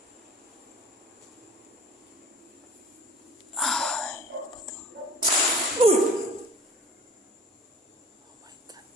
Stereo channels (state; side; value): normal; both; correlation 0.45